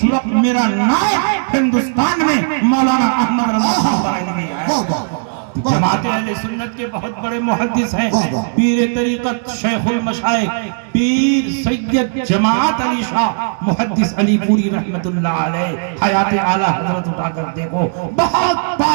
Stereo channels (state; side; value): silent; left; digital silence